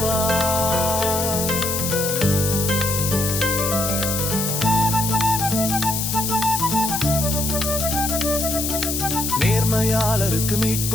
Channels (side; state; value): left; noise; hiss, 2 dB below the sound